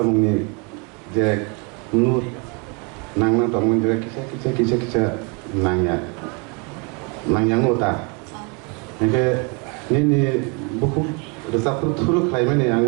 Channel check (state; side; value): quieter; left; 32.6 dB